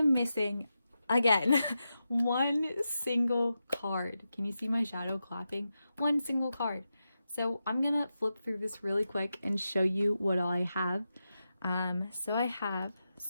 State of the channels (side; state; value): both; inverted; correlation -0.90